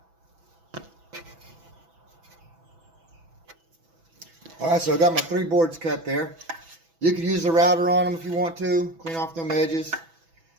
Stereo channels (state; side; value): late; left; 6.1 ms